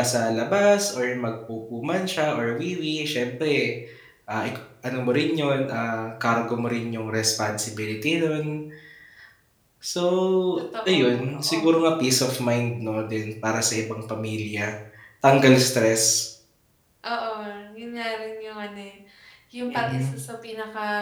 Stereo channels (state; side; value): identical; both; correlation 1.00